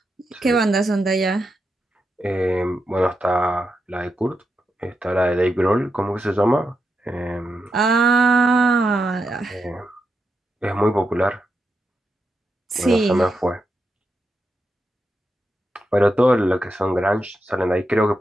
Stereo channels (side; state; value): both; normal; correlation 0.86